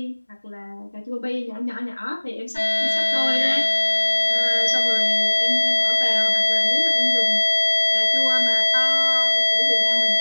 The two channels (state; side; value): inverted; both; correlation -1.00